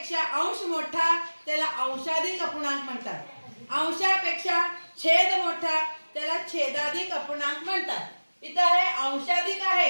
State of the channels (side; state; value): both; inverted; correlation -1.00